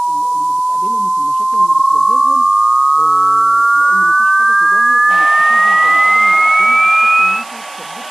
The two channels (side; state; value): right; noise; hiss, 23 dB below the sound